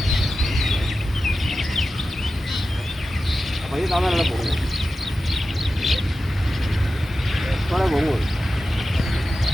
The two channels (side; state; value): both; normal; correlation 0.93